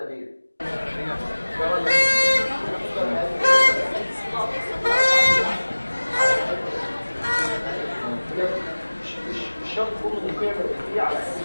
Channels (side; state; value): both; inverted; correlation -1.00